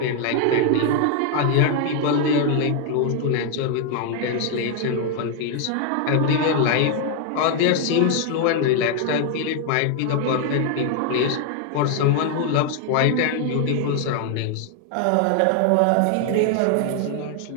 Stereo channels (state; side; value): different; both; correlation 0.00